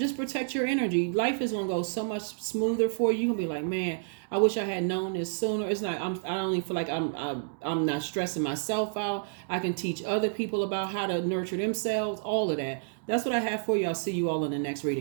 protect your energy. Life is going to go so much smoother for you. You're going to be like, man, I wish I had known this sooner. It's not, I don't even feel like I'm not stressing myself out. I can teach other people about how to nurture themselves, all of that. That's what I have for you. I'll see you all in the next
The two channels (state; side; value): silent; left; digital silence